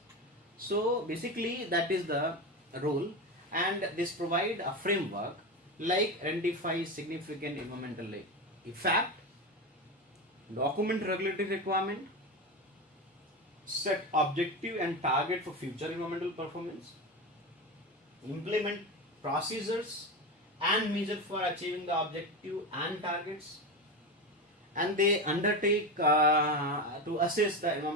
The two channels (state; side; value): normal; both; correlation 0.20